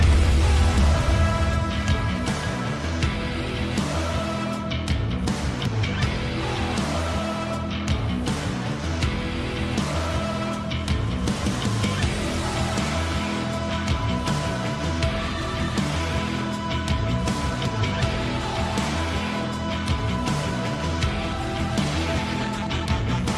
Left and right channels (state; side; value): identical; both; correlation 1.00